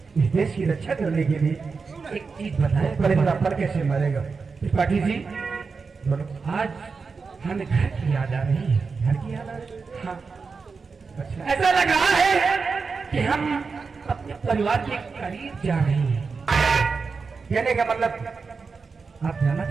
इस देश की रक्षा करने के लिए। एक चीज बताएं, परिंदा पर कैसे मरेगा? त्रिपाठी जी, बोलो। आज हमें घर की याद आ रही है। घर की याद आ रही है? हाँ, अच्छा, ऐसा लग रहा है कि हम अपने परिवार के करीब जा रहे हैं। कहने का मतलब आप जाना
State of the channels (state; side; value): quieter; left; 4.8 dB